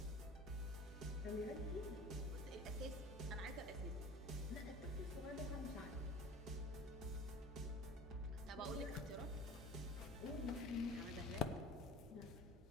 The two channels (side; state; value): both; normal; correlation 0.41